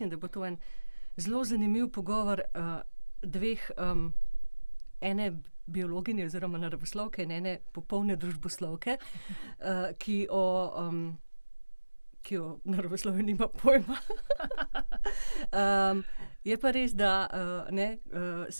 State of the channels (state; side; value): inverted; both; correlation -1.00